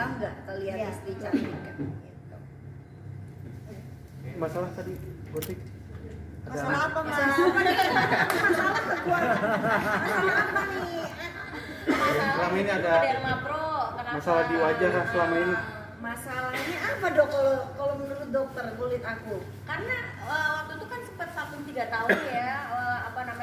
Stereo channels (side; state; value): both; identical; correlation 1.00